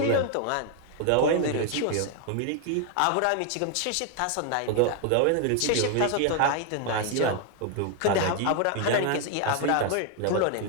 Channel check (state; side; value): different; both; correlation 0.01